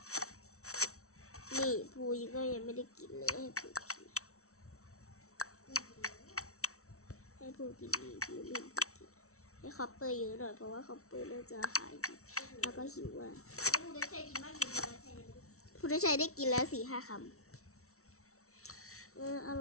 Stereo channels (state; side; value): late; right; 0.63 ms